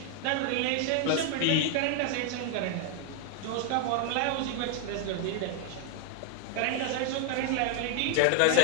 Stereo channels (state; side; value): different; both; correlation 0.00